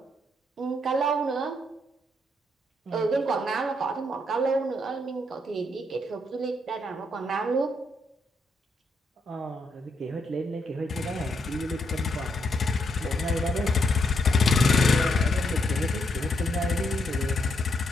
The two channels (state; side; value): normal; both; correlation 0.76